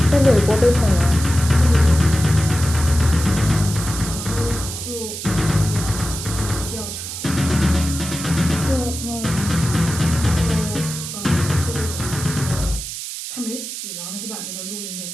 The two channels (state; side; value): noise; right; hiss, 8 dB below the sound